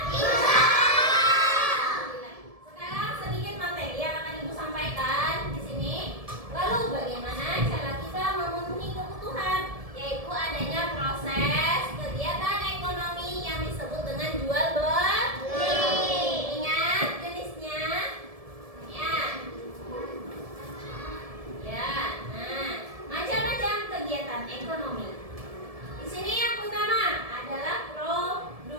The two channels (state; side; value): late; left; 1.7 ms